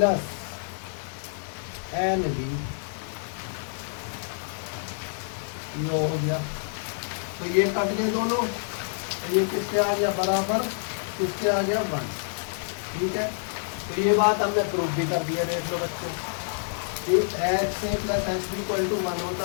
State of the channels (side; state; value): right; silent; digital silence